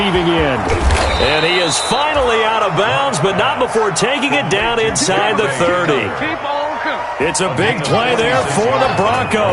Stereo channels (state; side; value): identical; both; correlation 1.00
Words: end. And he is finally out of bounds, but not before taking it down inside the 30. It's a big play there for the